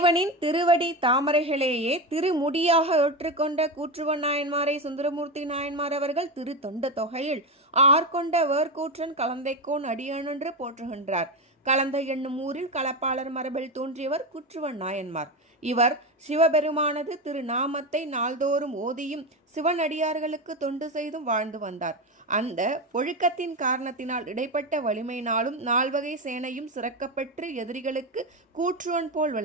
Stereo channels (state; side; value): normal; both; correlation 0.16